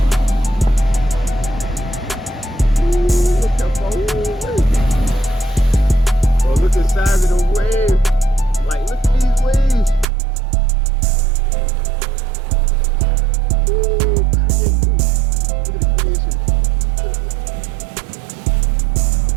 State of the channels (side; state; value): left; drops out; at 10.1 s